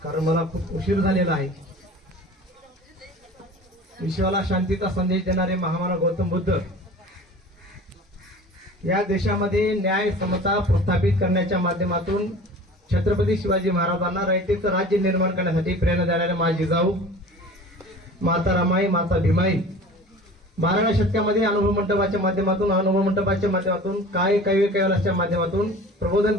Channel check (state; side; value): normal; both; correlation 0.41